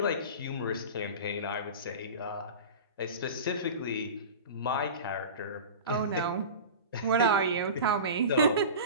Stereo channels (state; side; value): inverted; both; correlation -0.32